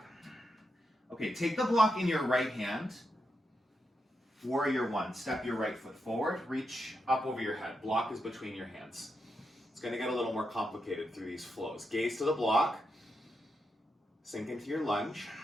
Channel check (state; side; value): normal; both; correlation 0.85